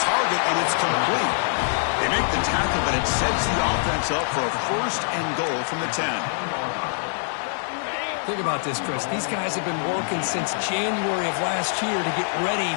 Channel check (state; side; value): silent; right; 62 dB below the other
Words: and it's complete. They make the tackle, but it sets the offense up for a 1st and goal from the 10. Think about this, Chris. These guys have been working since January of last year to get ready